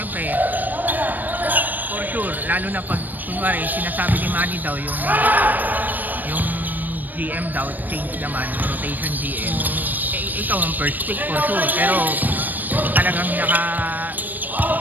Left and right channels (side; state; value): left; late; 0.087 ms